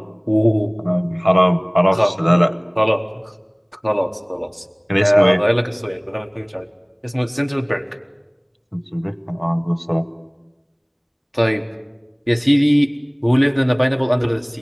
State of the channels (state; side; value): identical; both; correlation 1.00